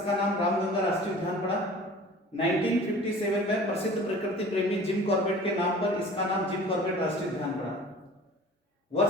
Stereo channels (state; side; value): normal; both; correlation 0.44